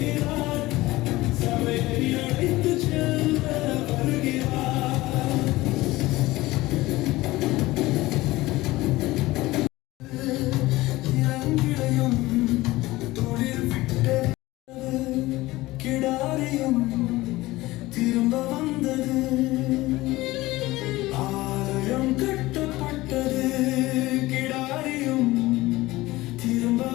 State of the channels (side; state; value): right; quieter; 18.8 dB